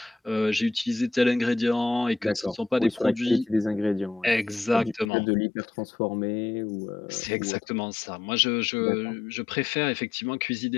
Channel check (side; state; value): right; drops out; at 5.1 s